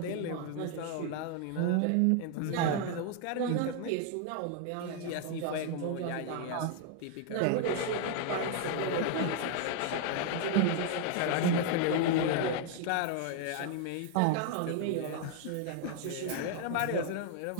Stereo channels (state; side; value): different; both; correlation 0.00